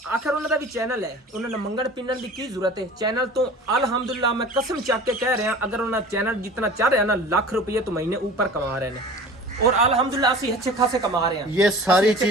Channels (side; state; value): both; normal; correlation 0.40